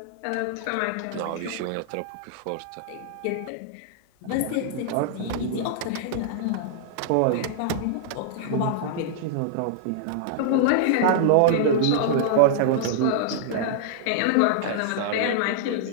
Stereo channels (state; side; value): different; both; correlation -0.01